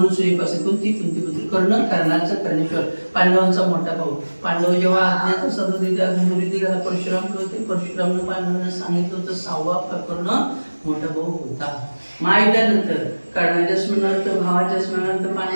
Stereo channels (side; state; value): both; inverted; correlation -1.00